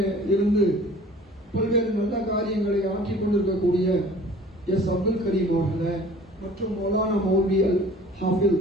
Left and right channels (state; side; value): normal; both; correlation 0.48